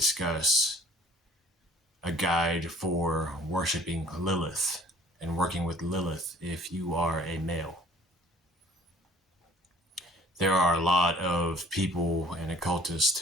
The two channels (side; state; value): both; normal; correlation 0.53